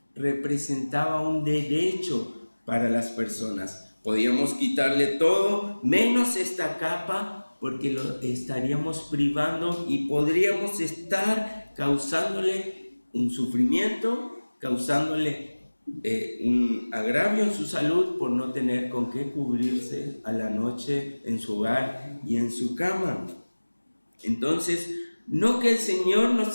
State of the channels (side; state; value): both; inverted; correlation -1.00